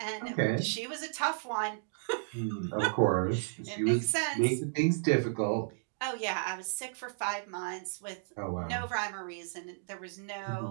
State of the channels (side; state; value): left; silent; digital silence